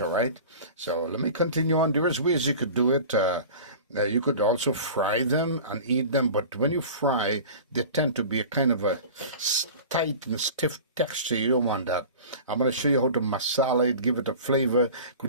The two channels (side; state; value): both; inverted; correlation -0.37